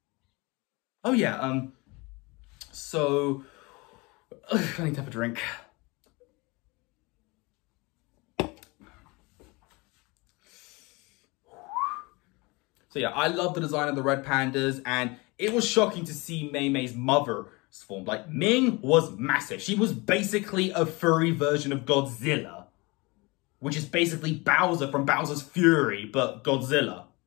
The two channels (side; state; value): right; quieter; 25.7 dB